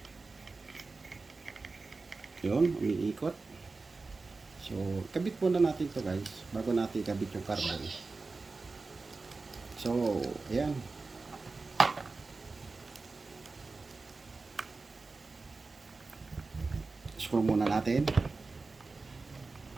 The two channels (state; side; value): quieter; left; 3.9 dB